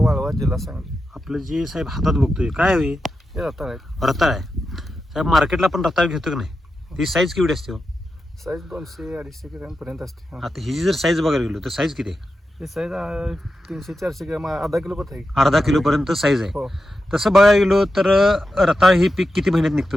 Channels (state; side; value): normal; both; correlation 0.89